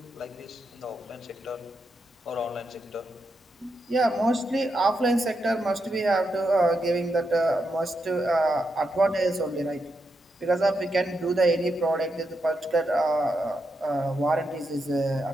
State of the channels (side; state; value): both; normal; correlation 0.84